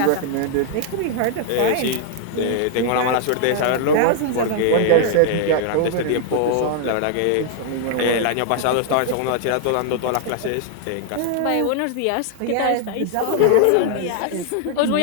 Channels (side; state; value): both; different; correlation 0.00